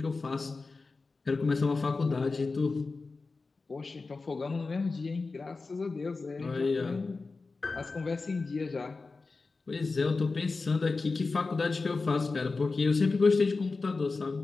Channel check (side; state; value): right; quieter; 3.9 dB